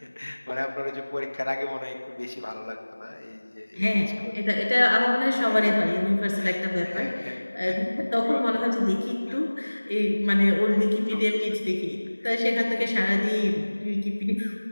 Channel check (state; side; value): inverted; both; correlation -1.00